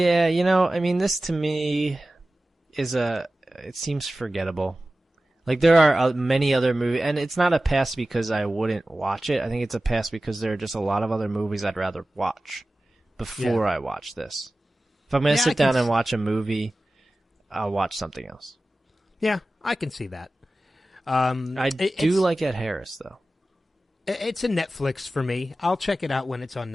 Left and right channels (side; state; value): both; normal; correlation 0.96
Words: I mean, this to me is it seems forgettable. Like, there are many other movies, and it's not a pass because I wouldn't watch it. I think it's a pass because there are just a lot of other movies I'd rather watch before I watch this. If I'm going to sit down and watch a movie, I'll watch something else. Yeah, I can see that. I do like Ed Harris, though. It's a Netflix for me. I'll check it out when it's on